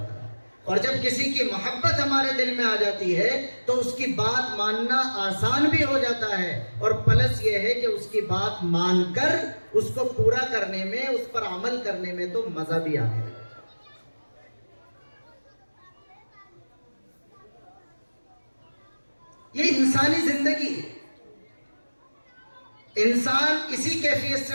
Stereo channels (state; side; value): inverted; both; correlation -1.00